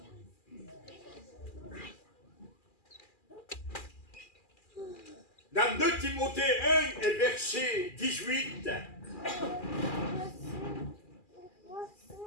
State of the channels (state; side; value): late; right; 2.4 ms